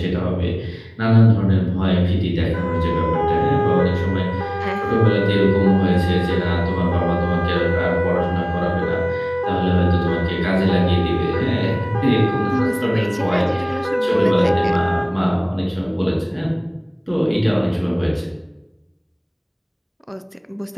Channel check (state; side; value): identical; both; correlation 1.00